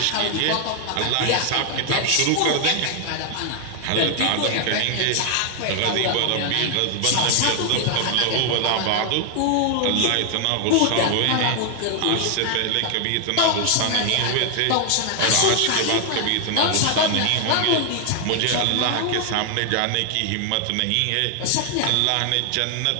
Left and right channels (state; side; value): different; both; correlation 0.00